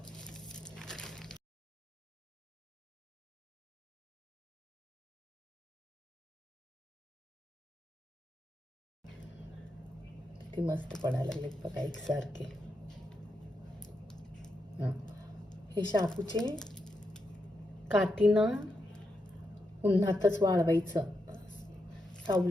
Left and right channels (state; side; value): normal; both; correlation 0.84